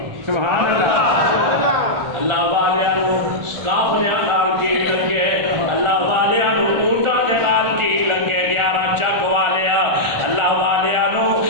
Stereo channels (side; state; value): left; late; 1.4 ms